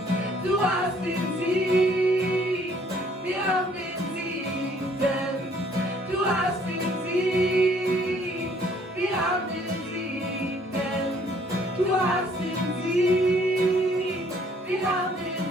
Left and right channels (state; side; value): normal; both; correlation 0.62